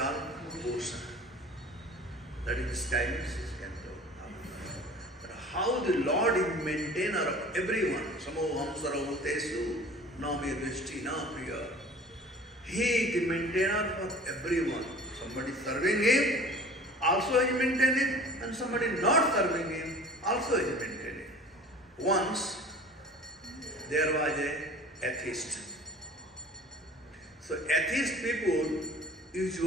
bhushan. That is described in 6th canto. how the Lord is maintainer of everyone. Samoham saravatesu nami drishti na priya. He is the maintainer for everyone. Somebody serving him, also is maintaining, and somebody not serving him, also is maintaining. Once there was an atheist. So atheist people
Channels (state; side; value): normal; both; correlation 0.44